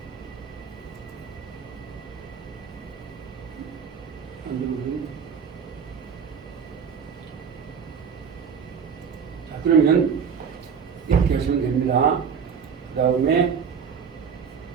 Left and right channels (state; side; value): quieter; left; 6.7 dB